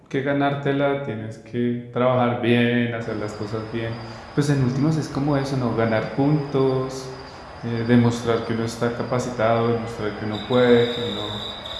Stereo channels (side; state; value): both; identical; correlation 1.00